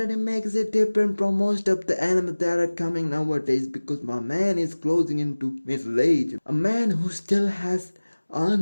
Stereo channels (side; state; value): both; inverted; correlation -1.00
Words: makes it different from most of the anime that are coming nowadays because my man is closing into middle age. A man who still has